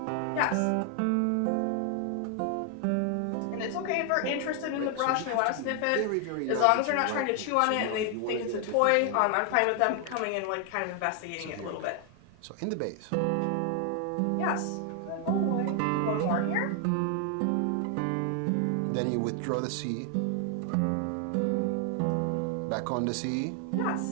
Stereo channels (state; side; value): different; both; correlation 0.00